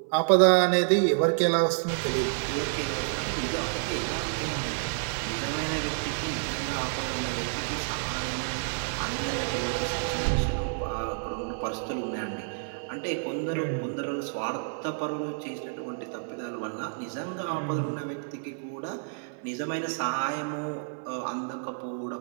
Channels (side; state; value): left; silent; 58 dB below the other